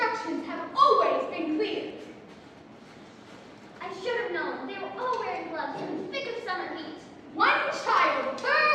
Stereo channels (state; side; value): identical; both; correlation 1.00